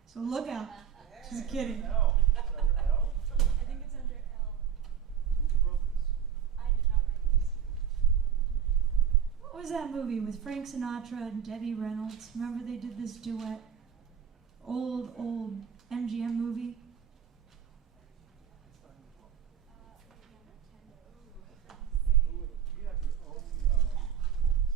So look out. Just kidding. L. Is that under L? I think it's under L. Who wrote this? I did not write this. What was that movie with Frank Sinatra and Debbie Reynolds? Remember they did this duet? Old MGM movie. Who would it? You have your own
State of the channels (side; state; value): left; quieter; 8.6 dB